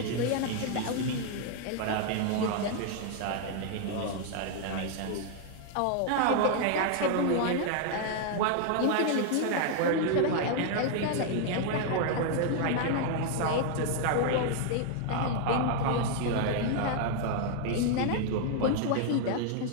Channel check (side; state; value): both; different; correlation 0.00